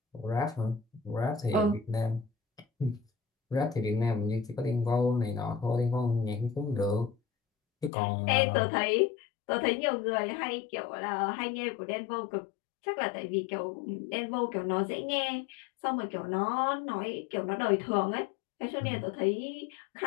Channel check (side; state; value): right; drops out; at 7.9 s